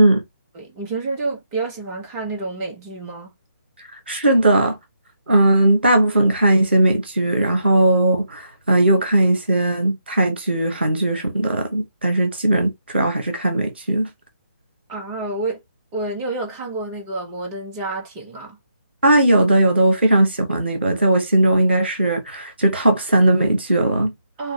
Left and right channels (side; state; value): both; inverted; correlation -0.80